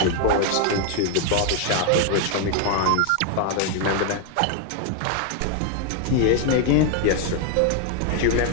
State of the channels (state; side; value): different; both; correlation 0.01